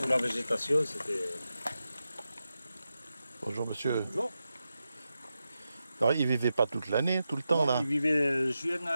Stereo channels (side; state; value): both; inverted; correlation -0.90